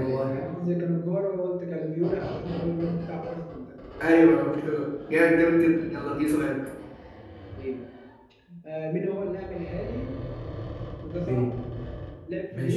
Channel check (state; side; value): identical; both; correlation 1.00